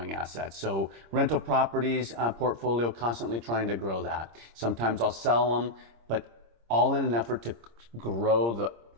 assets. So rental properties portfolio, constantly trying to grow that. Sometimes I'll sell them, but all in an effort to grow the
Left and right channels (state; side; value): late; left; 26 ms